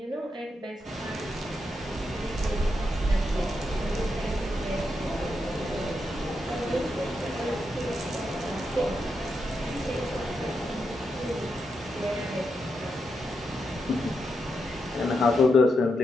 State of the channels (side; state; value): both; normal; correlation 0.84